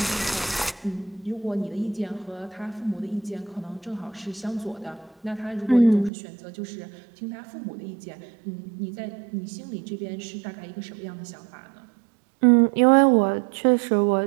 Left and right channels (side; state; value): left; drops out; at 6.1 s